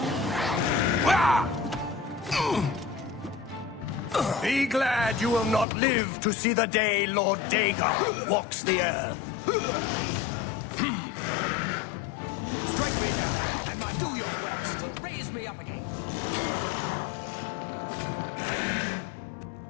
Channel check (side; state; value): right; drops out; at 5.7 s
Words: Be glad you will not live to see the day Lord Dagon walks the earth. Strike me down, and my father's power will raise me up again.